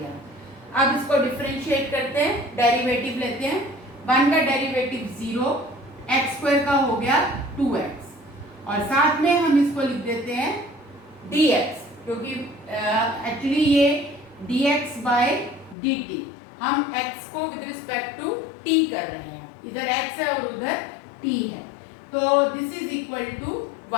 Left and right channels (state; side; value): drops out; right; at 15.8 s